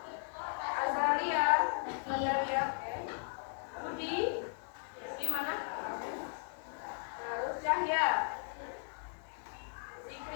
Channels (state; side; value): silent; right; 53 dB below the other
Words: Azalia, Budi, di mana? Terus Cahya,